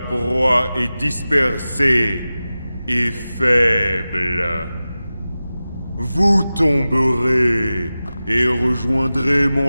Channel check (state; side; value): inverted; both; correlation -0.95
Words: est dispersée et faible. Vous tomberez et rejoindrez